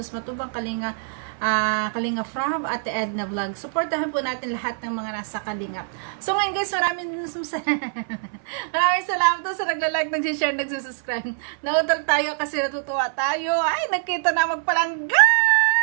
Matubang Kalinga, Kalinga From at Edna Vlog. Supportahan po natin lahat ng mga nasa Kalingap. So ngayon guys, maraming salamat po sa nagla-like, nag-share, nag-subscribe. Nautol tayo kasi natutuwa tayo. Ay, nakita na magpalangga!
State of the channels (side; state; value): left; silent; 59 dB below the other